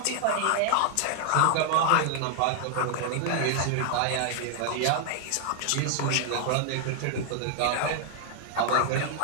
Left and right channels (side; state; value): both; different; correlation 0.00